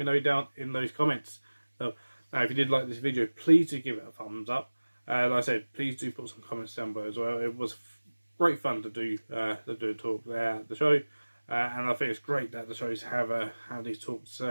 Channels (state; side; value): inverted; both; correlation -1.00